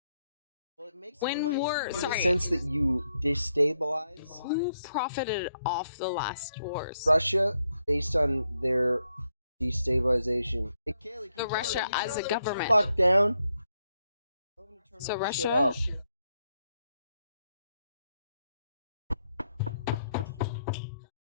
Well, it makes when war, in sorry, the sense that you destabilize. Who profited off the last wars? Russia, based on their destabilization. The Russia as a government. Fuck down. So Russia.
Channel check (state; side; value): inverted; both; correlation -0.79